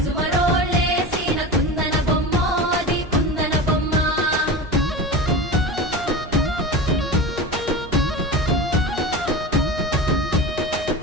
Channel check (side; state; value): both; normal; correlation 0.28